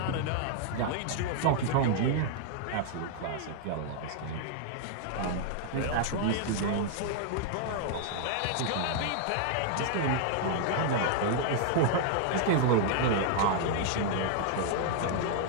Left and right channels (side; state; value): both; different; correlation -0.01